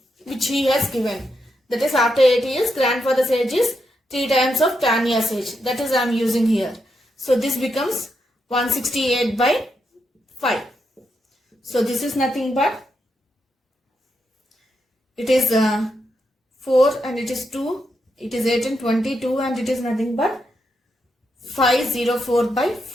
which he has given. That is after 8 years grandfather's age is 3 times of Tanya's age. That is I am using here. So this becomes 168 by 5. So this is nothing but it is 4 and it is 2, it is 18, 22 and it is nothing but 504 by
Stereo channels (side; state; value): both; normal; correlation 0.83